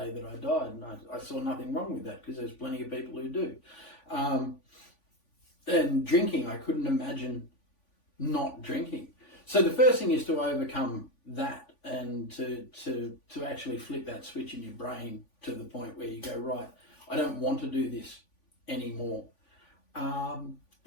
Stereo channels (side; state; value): right; late; 3.5 ms